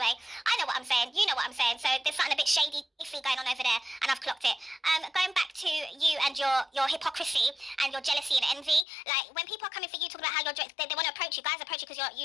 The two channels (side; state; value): right; drops out; at 8.8 s